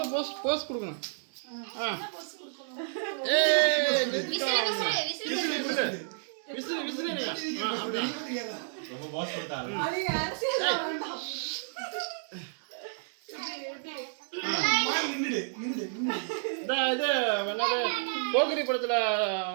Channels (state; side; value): silent; left; digital silence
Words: போஸ்ட் கொடுக்கணும். போக்கிரி படத்துல